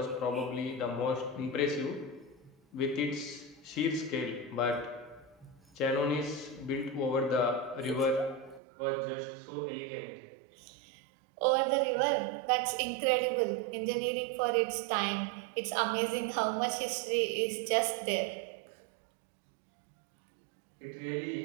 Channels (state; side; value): drops out; left; at 8.6 s